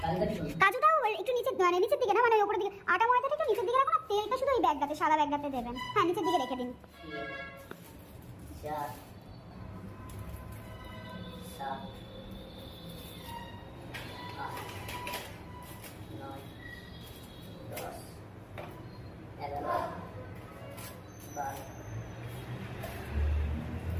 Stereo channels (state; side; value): identical; both; correlation 1.00